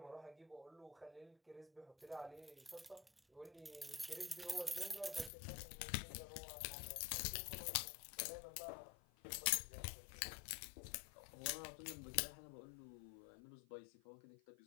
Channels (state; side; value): drops out; right; at 5.3 s